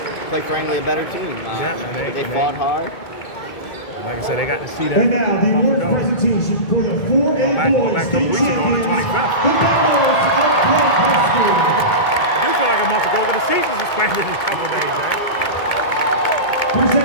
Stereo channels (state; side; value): late; right; 2.2 ms